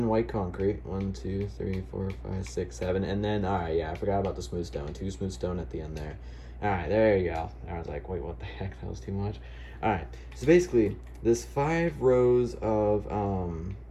white concrete. 1, 2, 3, 4, 5, 6, 7. And then, alright, yeah, I forgot about the smooth stone. 2 smooth stone at the end there. Alright, there you go. I was like, wait, what the heck? That was too much. Alright, so basically, this 5 rows of,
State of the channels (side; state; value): both; identical; correlation 1.00